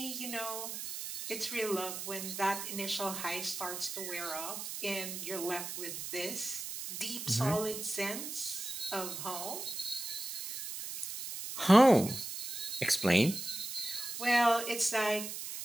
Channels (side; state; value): right; noise; hiss, 6 dB below the sound